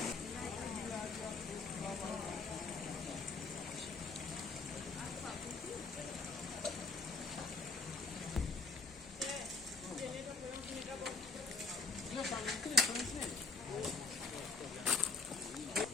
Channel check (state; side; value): quieter; right; 3.9 dB